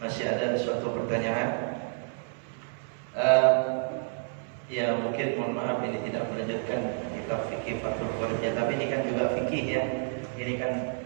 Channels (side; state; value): left; silent; 58 dB below the other